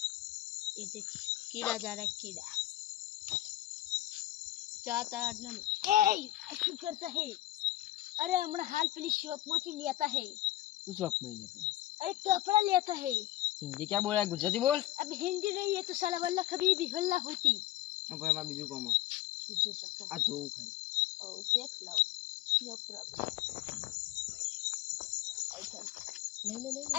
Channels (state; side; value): quieter; right; 15.1 dB